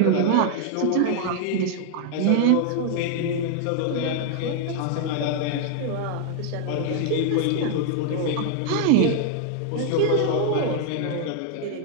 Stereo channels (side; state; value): both; different; correlation 0.00